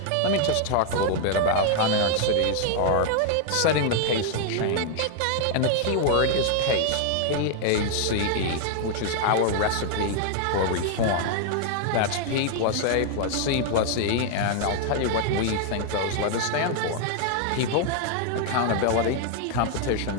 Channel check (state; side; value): different; both; correlation 0.00